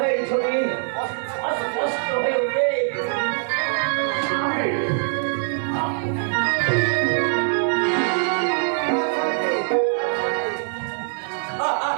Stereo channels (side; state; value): left; silent; digital silence